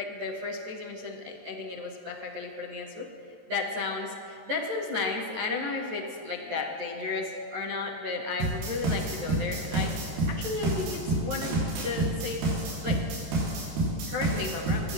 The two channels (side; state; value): left; late; 13 ms